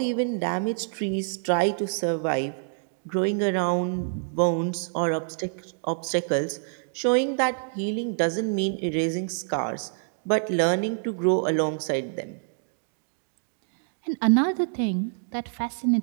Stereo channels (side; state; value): left; silent; digital silence